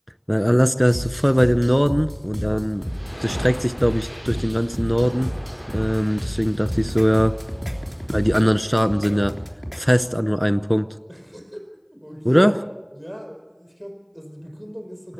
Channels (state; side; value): identical; both; correlation 1.00